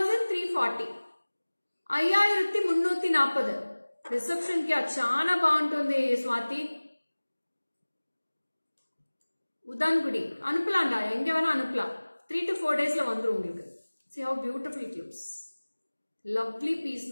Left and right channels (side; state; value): both; inverted; correlation -1.00